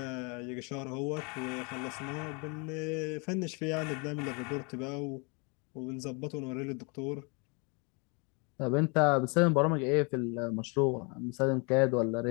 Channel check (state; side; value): quieter; right; 32.8 dB